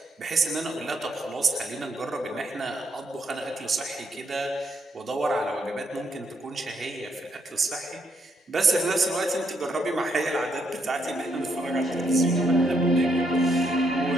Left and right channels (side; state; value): both; normal; correlation 0.75